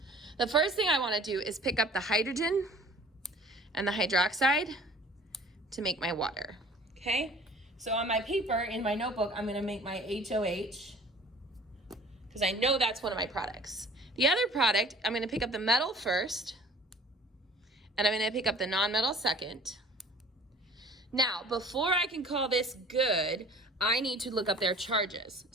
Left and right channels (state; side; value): normal; both; correlation 0.48